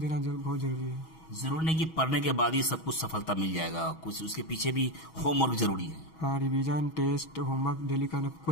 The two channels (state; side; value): late; right; 6.2 ms